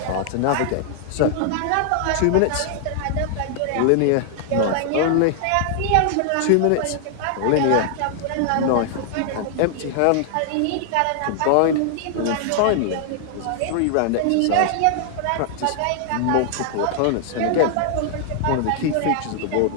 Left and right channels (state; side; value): different; both; correlation 0.00